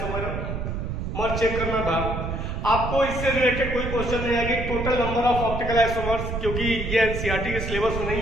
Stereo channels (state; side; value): noise; right; rumble, 4 dB below the sound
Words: चेक करना था। आपको इससे रिलेटेड कोई क्वेश्चन नहीं आएगी total number of optical isomers, क्योंकि ये एनसीईआरटी के सिलेबस में